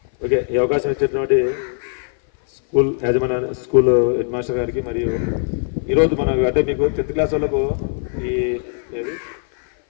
ఓకే, ఈ అవకాశం ఇచ్చేటువంటి స్కూల్ యాజమాన్య, స్కూల్ హెడ్ మాస్టర్ గారికి, మరియు ఈరోజు మన అంటే మీకు 10th క్లాస్ వాళ్ళకు ఈ ఏది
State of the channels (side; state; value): right; silent; 56 dB below the other